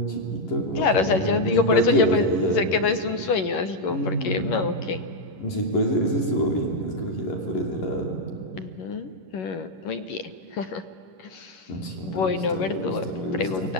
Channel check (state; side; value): late; right; 11 ms